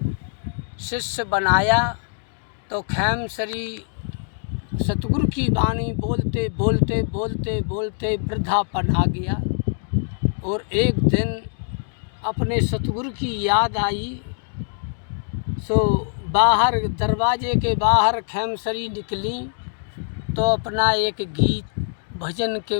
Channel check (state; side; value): silent; right; 63 dB below the other